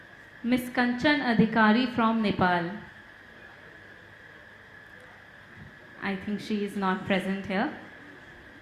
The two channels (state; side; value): identical; both; correlation 1.00